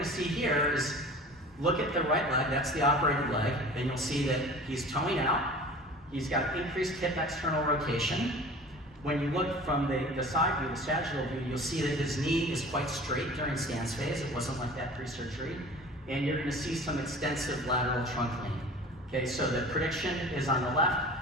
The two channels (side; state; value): both; normal; correlation 0.41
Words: to see here is look at the right leg, that's the operated leg, and you'll see that he's toeing out. He's got increased hip external rotation. When you look from the side view, the sagittal view, you'll see that his knee is quite straight during stance phase. It wasn't like that pre-surgery. And you're going to see some extensive lateral trunk lean. Okay, so the prediction is on the left,